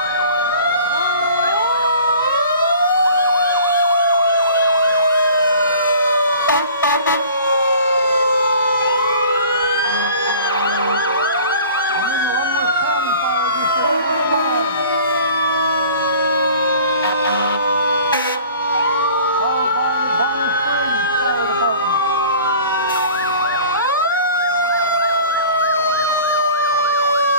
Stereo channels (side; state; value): both; inverted; correlation -0.46